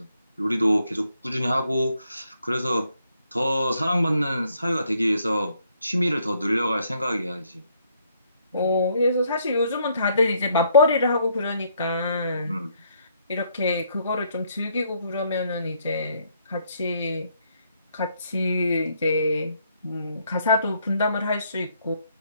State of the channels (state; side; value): inverted; both; correlation -0.71